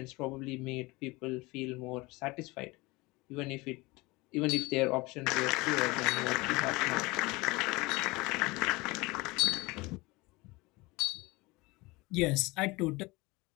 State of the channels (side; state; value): right; quieter; 23.2 dB